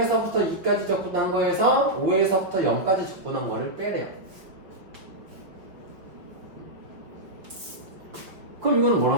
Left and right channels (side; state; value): left; late; 5.4 ms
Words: 2까지 적분한 거에서 5에서부터 0까지 적분한 거를 빼래요. 그럼 이거는